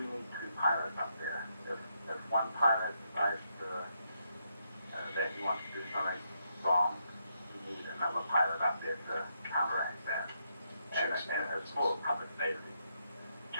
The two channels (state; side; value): inverted; both; correlation -0.79